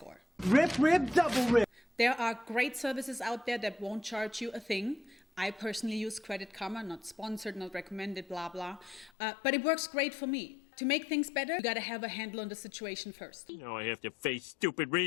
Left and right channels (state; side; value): drops out; right; at 9.1 s